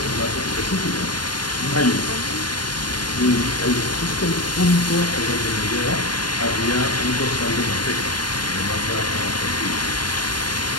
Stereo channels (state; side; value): late; right; 0.71 ms